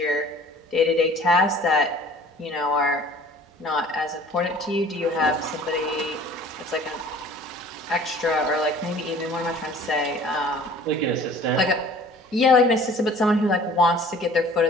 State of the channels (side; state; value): both; normal; correlation 0.49